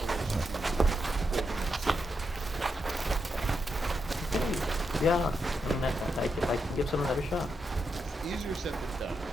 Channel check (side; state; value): both; normal; correlation 0.84